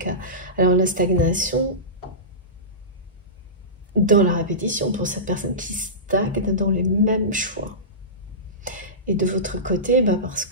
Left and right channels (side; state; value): both; normal; correlation -0.20